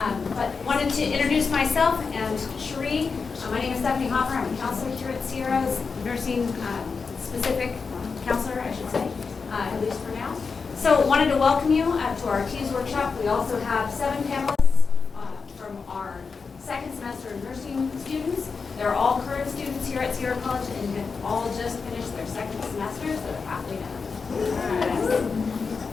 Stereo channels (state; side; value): quieter; right; 5.0 dB